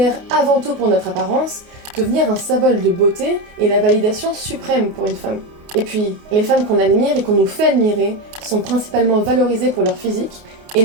avant tout pour notre apparence, devenir un symbole de beauté est la validation suprême pour une femme. Et puis, les femmes qu'on admire et qu'on nous fait admirer sont principalement valorisées pour leur physique et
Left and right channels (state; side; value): late; left; 29 ms